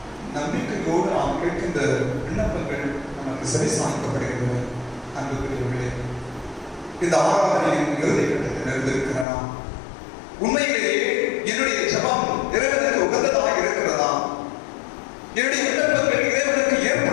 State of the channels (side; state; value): right; drops out; at 9.2 s